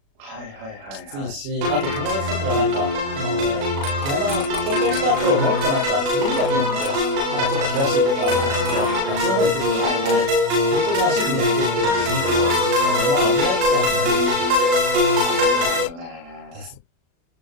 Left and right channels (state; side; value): late; left; 36 ms